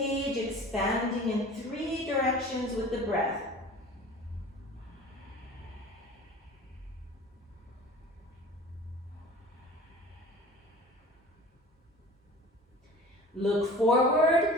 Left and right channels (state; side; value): normal; both; correlation 0.42